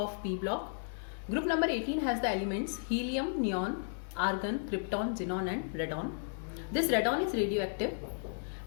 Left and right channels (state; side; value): silent; right; digital silence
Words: P block. Group number 18 has the elements helium, neon, argon, krypton, xenon and radon. This radon is radioactive.